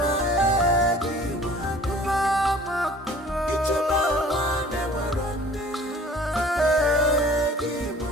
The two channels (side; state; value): both; normal; correlation 0.49